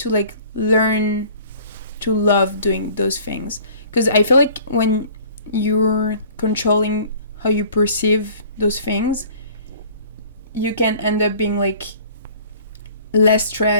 like learn to love doing those things, because I feel like when you're controlling how you perceive those things, you can end up being like less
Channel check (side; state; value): both; inverted; correlation -0.50